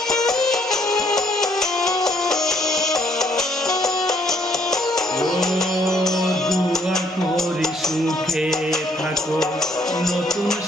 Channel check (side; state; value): both; normal; correlation 0.67